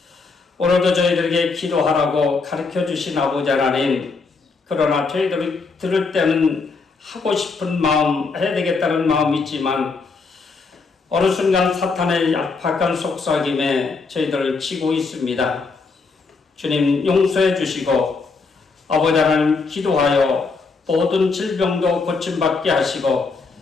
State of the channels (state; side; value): quieter; right; 4.4 dB